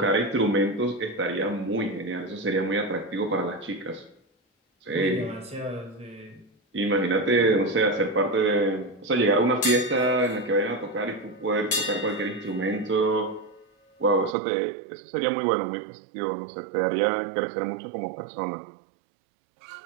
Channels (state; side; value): drops out; left; at 14.4 s